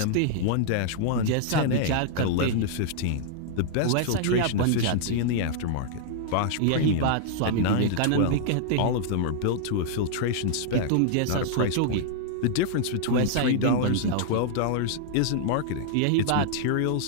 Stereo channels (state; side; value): different; both; correlation -0.01